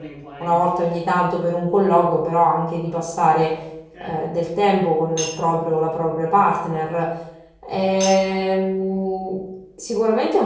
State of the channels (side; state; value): both; identical; correlation 1.00